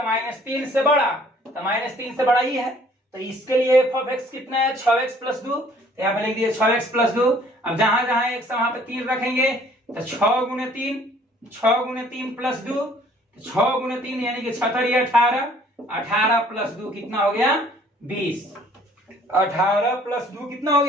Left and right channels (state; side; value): normal; both; correlation 0.58